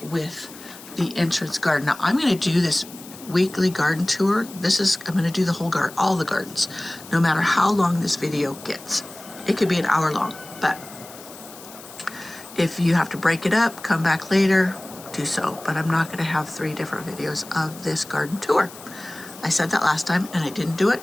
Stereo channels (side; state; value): left; noise; hiss, 17 dB below the sound